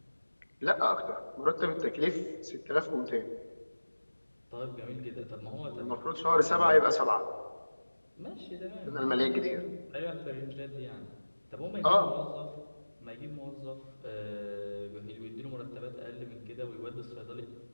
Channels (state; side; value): inverted; both; correlation -1.00